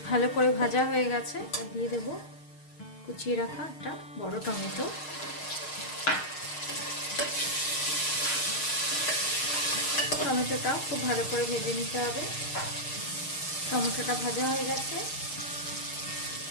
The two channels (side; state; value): right; late; 6.5 ms